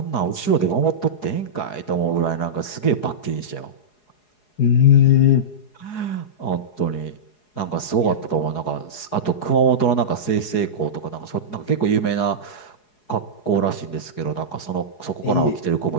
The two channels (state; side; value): late; right; 4.8 ms